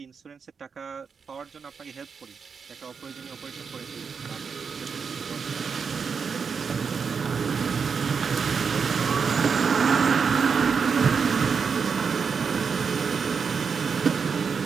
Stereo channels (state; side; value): quieter; left; 5.9 dB